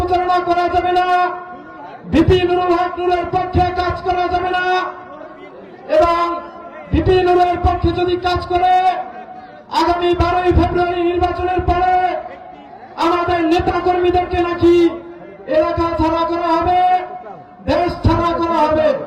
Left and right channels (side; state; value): both; identical; correlation 1.00